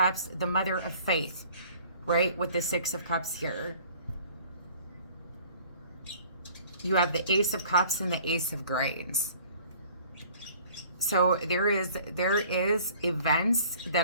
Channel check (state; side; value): inverted; both; correlation -0.52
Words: the Mother of Faith, right? With the Six of Cups here. You have the Ace of Cups and the Ace of Grains. So there is events